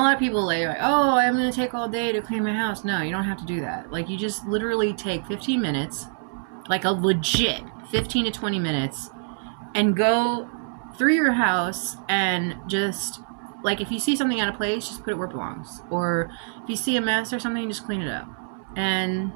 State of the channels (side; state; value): left; silent; 60 dB below the other